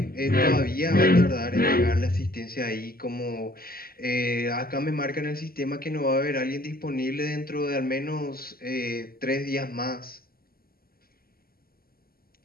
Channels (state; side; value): late; right; 0.43 ms